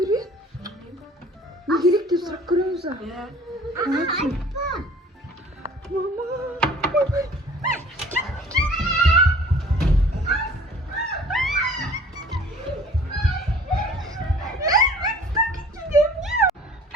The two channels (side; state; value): both; normal; correlation 0.49